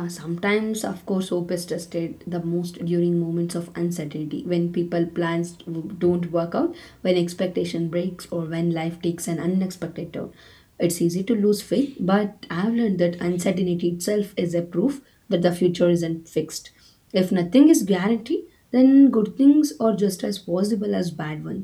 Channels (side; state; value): both; identical; correlation 1.00